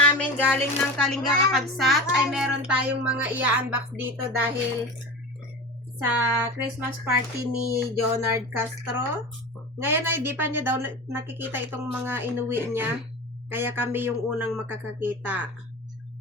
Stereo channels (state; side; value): normal; both; correlation 0.30